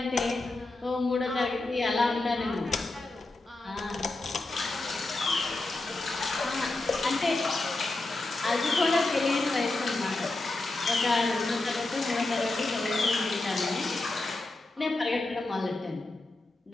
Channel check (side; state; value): right; quieter; 3.0 dB